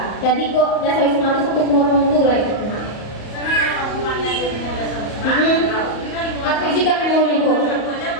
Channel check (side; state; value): right; late; 34 ms